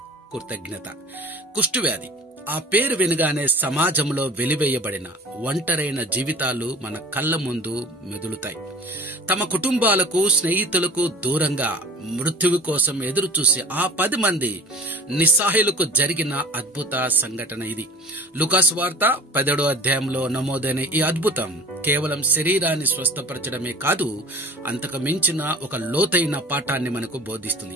కృతజ్ఞత. కుష్ఠవ్యాధి ఆ పేరు వినగానే సమాజంలో వెలివేయబడిన ఒంటరైన జీవితాలు మన కళ్ళ ముందు మెదులుతాయి. తమ కుటుంబాలకు, స్నేహితులకు దూరంగా మృత్యువు కోసం ఎదురు చూసి ఆ 10 మంది నిస్సహాయులకు జరిగిన అద్భుత సంఘటన ఇది. లూకాసు వార్త 17వ అధ్యాయంలో నమోదైన ఈ అద్భుతం కేవలం శరీరాన్ని స్వస్థపరచడమే కాదు, అంతకు మించిన ఒక లోతైన పాఠాన్ని మనకు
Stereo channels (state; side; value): normal; both; correlation 0.42